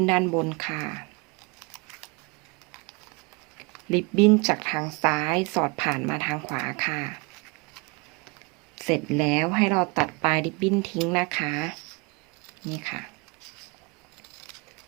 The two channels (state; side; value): quieter; left; 28.9 dB